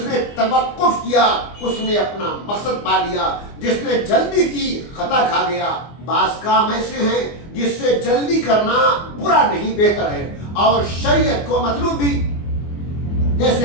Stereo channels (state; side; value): late; right; 24 ms